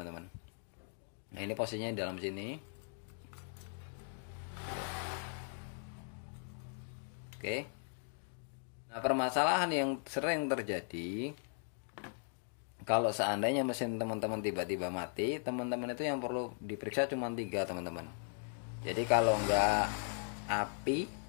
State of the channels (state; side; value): silent; right; 52 dB below the other